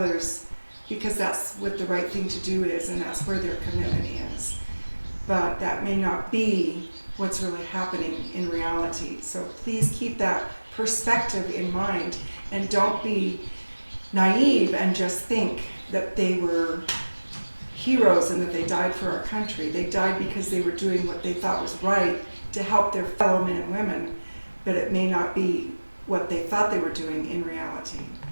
because that's what the right thing to do is, and that's where their commitment is. But that may not be what's really happening in reality. So please keep that perspective in mind, and don't be naive and just think that they were heroes and that they died for our country. They died because they were doing what they thought was right to help their fellow men and women, but it may not be what they thought they were doing in reality.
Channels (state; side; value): inverted; both; correlation -1.00